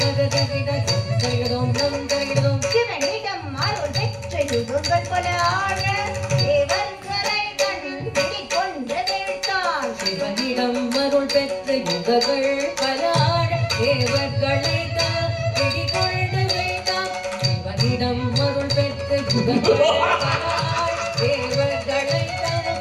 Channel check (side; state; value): both; identical; correlation 1.00